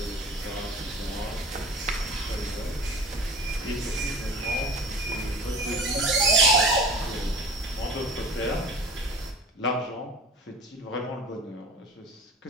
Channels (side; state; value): both; normal; correlation 0.39